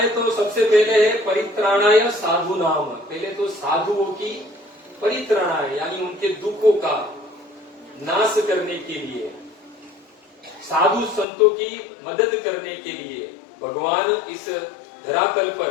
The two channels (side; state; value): right; drops out; at 11.2 s